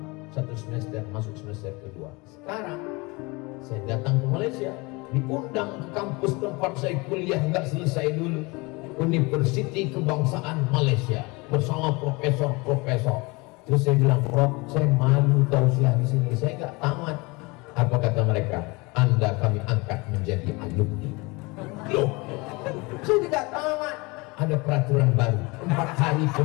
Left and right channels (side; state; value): right; quieter; 25.7 dB